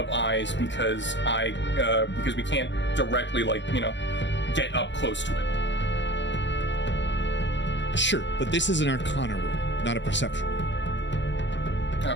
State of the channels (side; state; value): right; late; 0.53 ms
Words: eyes because we can't directly get up close to it. Sure, but this is an Arcana roll, not a perception roll. Okay.